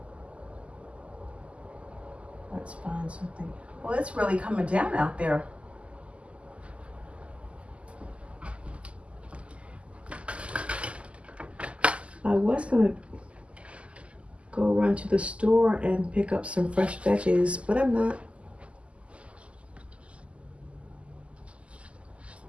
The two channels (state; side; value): late; left; 0.058 ms